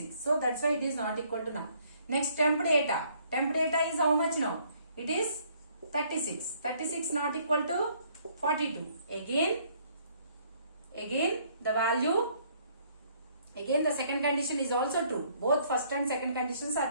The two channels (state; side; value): inverted; both; correlation -0.64